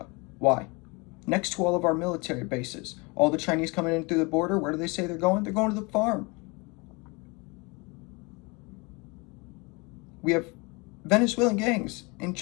Why? Next to all of our military bases. All the Chinese coming in through the border, where do they say they're going? They're going to the farm. We have Venezuelan gangs and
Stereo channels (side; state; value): right; quieter; 28.0 dB